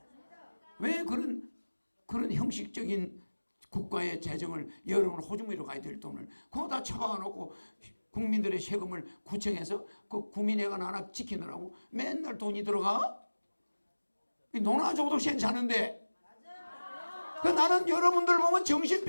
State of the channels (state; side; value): inverted; both; correlation -1.00